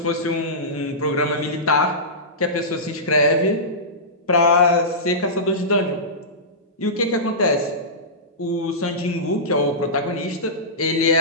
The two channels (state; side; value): normal; both; correlation -0.18